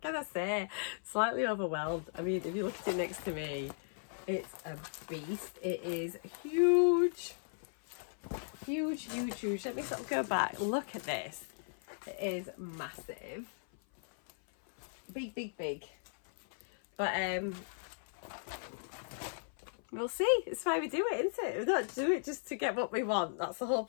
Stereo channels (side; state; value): right; silent; 53 dB below the other